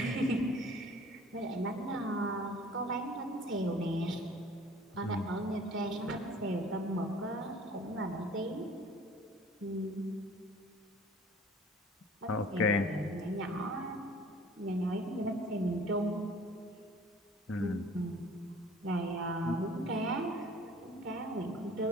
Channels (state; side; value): normal; both; correlation 0.50